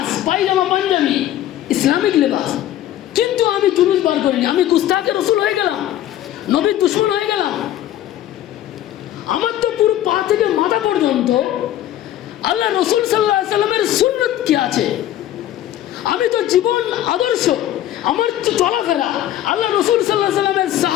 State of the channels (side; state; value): right; quieter; 12.6 dB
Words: পায়জামা পাঞ্জাবি ইসলামিক লেবাস, কিন্তু আমি জুলুস বার করিনি, আমি গুস্তাখে রসুল হয়ে গেলাম, নবীর দুশমন হয়ে গেলাম। আমার তো পুরো পা থেকে মাথা পর্যন্ত আল্লাহ রসুল সাল্লাল্লাহু আলাইহি সাল্লামের সুন্নত কি আছে, আমি তো জীবন আদর্শ, আমার চলাফেরা আল্লাহ রসুল সাল্লাল্লাহু আলাইহি সাল্লামের